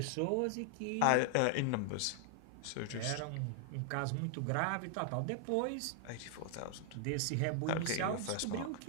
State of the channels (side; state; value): both; different; correlation 0.00